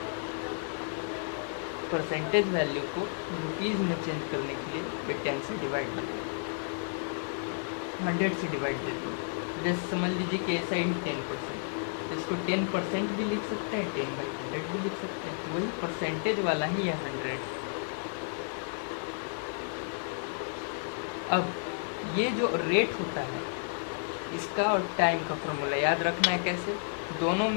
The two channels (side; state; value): right; silent; 57 dB below the other